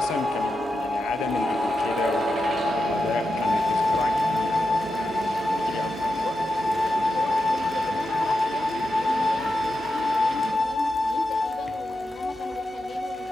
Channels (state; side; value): normal; both; correlation 0.88